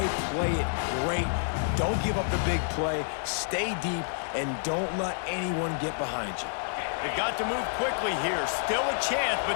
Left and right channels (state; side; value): silent; right; digital silence